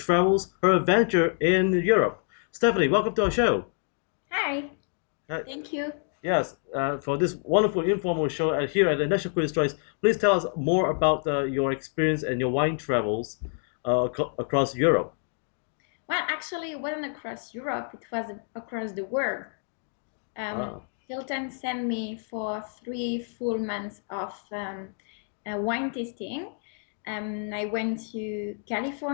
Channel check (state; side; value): silent; right; 60 dB below the other